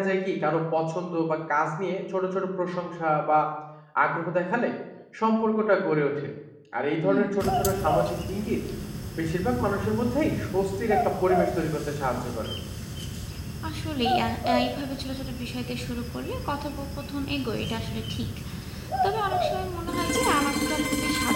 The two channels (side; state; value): both; identical; correlation 1.00